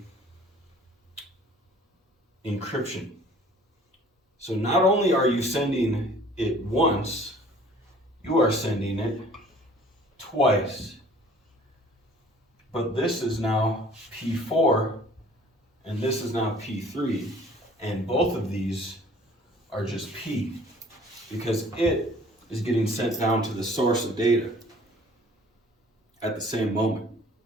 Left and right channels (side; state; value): both; normal; correlation 0.52